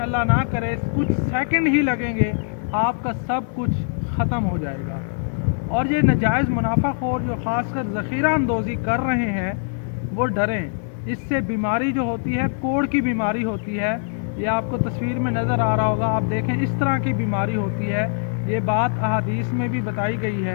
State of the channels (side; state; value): right; silent; 60 dB below the other